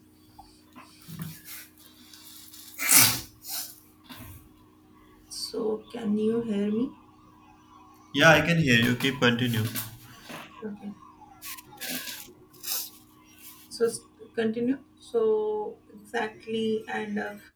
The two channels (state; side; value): identical; both; correlation 1.00